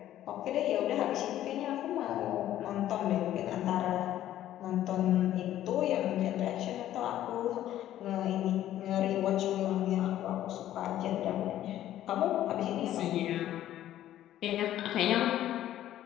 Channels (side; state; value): right; quieter; 12.7 dB